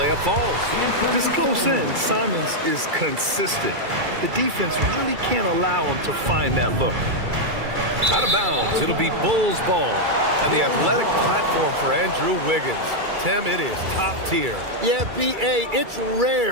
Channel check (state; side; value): late; left; 2.3 ms